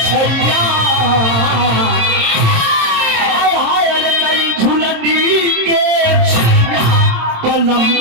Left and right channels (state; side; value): late; left; 27 ms